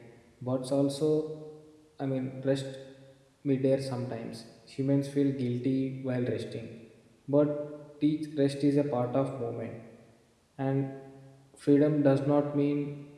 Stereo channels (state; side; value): identical; both; correlation 1.00